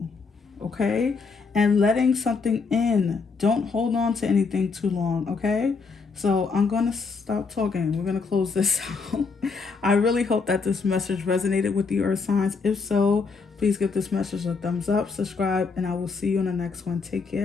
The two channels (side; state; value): right; quieter; 4.8 dB